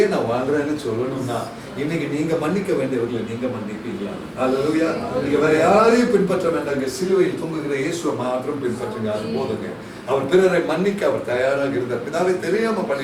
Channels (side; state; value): both; identical; correlation 1.00